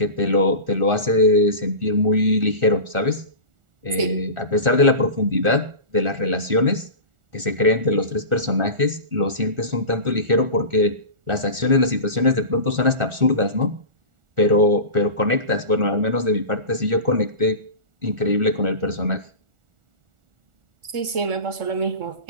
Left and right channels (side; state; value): left; late; 1.4 ms